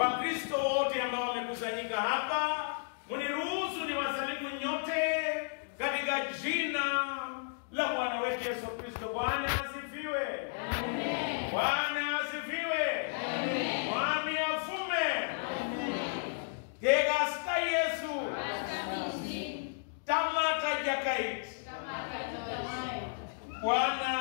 wote ambao wamekusanyika hapa, mniruhusu niwasalimu nyote katika jina la Bwana wetu Yesu Kristo. Bwana asifiwe. Amen. Bwana asifiwe. Amen. Mwami afume. Amen. Gegasta Yesu. Tamata jakait.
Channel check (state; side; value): silent; right; digital silence